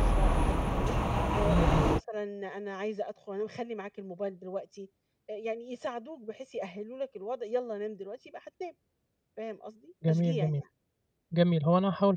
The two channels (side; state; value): both; identical; correlation 1.00